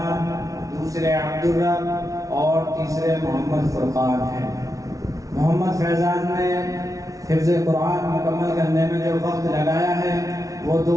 دوسرے عبدالرب اور تیسرے محمد فرقان ہیں۔ محمد فیضان نے حفظ قرآن مکمل کرنے میں جو وقت لگایا ہے وہ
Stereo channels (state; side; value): late; left; 0.17 ms